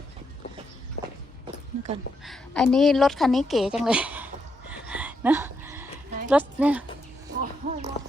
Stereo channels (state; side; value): normal; both; correlation 0.80